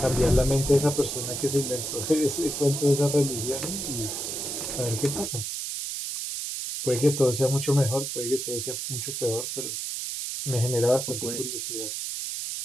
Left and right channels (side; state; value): right; noise; hiss, 4 dB below the sound